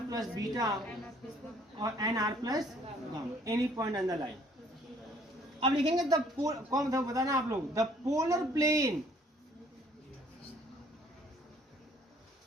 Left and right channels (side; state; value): both; normal; correlation 0.60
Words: plus beta और N R plus gamma, any point on the line. अब लिखेंगे द कौन बताना आप लोग, the polar plane